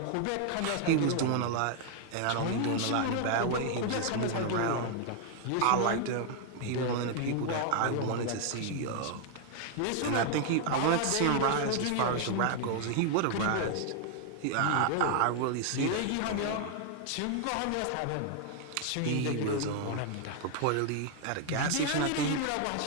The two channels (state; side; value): different; both; correlation 0.00